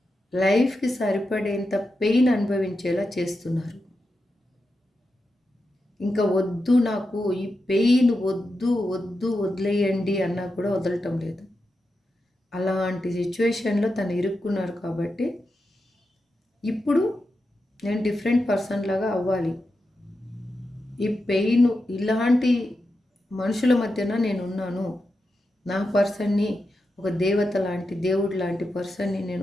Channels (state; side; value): normal; both; correlation 0.88